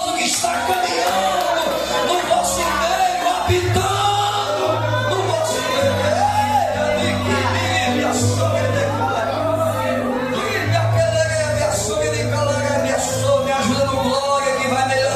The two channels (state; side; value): identical; both; correlation 1.00